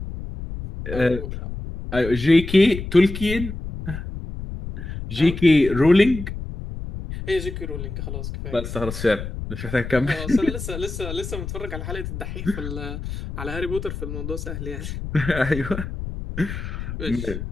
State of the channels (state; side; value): noise; left; rumble, 7 dB below the sound